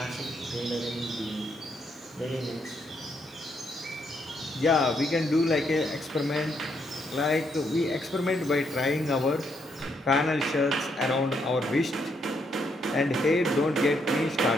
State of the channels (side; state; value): both; normal; correlation 0.75